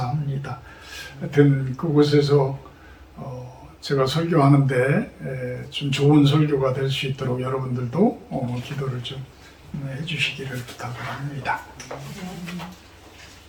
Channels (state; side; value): identical; both; correlation 1.00